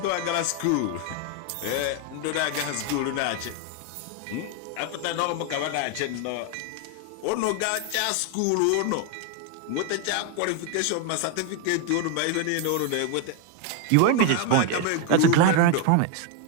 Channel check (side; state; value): both; different; correlation 0.01